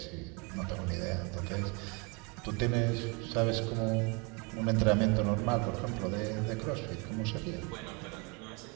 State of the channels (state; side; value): quieter; left; 30.1 dB